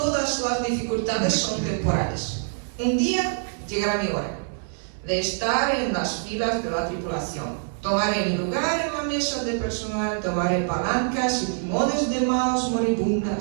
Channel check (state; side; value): silent; left; digital silence